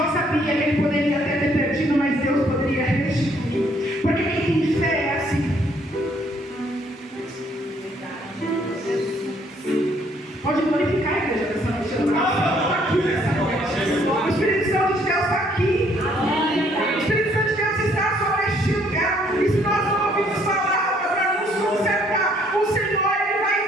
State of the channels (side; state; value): both; normal; correlation 0.65